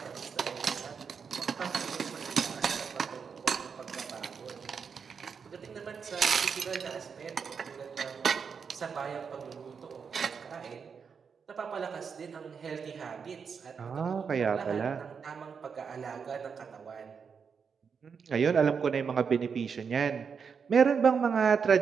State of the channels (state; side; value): quieter; left; 6.2 dB